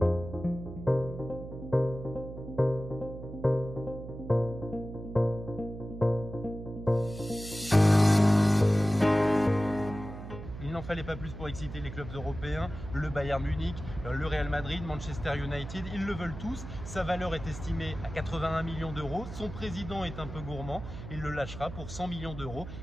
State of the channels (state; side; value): noise; right; hum, 11 dB below the sound